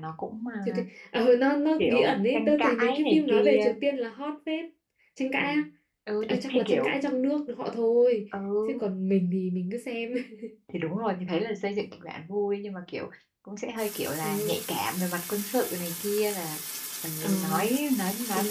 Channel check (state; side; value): identical; both; correlation 1.00